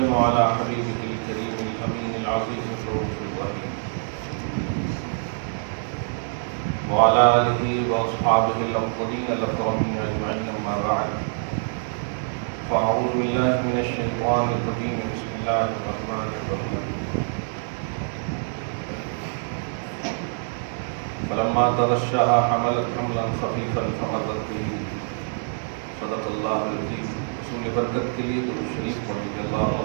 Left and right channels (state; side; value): silent; left; digital silence